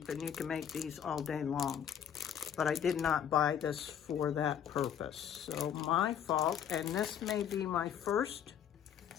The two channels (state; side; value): quieter; right; 8.9 dB